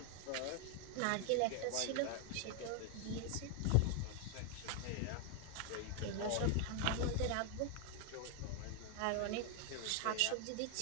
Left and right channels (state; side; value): different; both; correlation 0.00